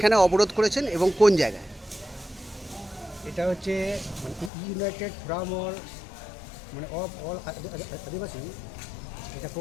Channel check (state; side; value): drops out; right; at 4.5 s